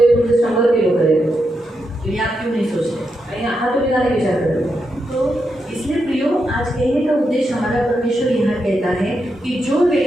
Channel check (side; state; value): both; normal; correlation 0.84